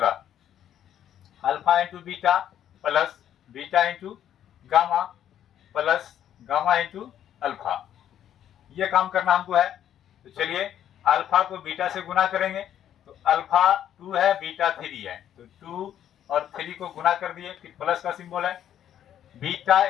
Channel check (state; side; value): quieter; right; 10.4 dB